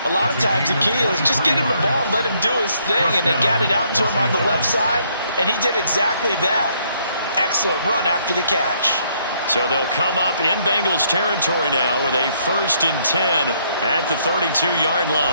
A lot of times the key is just get him the ball and let him do his thing, and they got it out to him on the left side, and he did exactly that. Excellent run after the catch. So they'll come up in Bengals territory now with a 1st and 10 at the 32-yard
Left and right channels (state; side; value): inverted; both; correlation -0.69